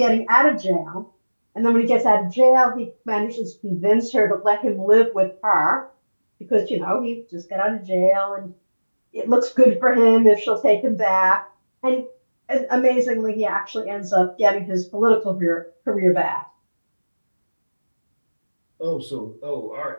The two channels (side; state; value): both; inverted; correlation -1.00